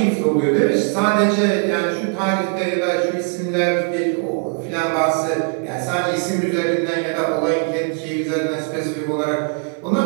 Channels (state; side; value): quieter; left; 40.0 dB